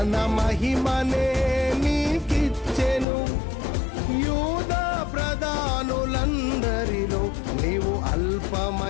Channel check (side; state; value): right; drops out; at 3.1 s